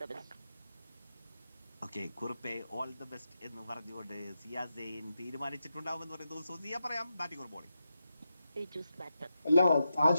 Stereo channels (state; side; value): inverted; both; correlation -0.88